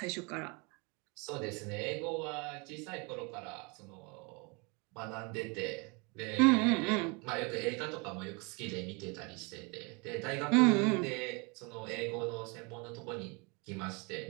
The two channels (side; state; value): left; quieter; 30.3 dB